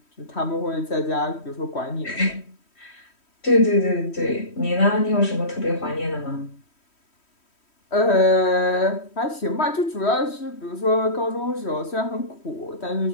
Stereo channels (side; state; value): right; late; 3.1 ms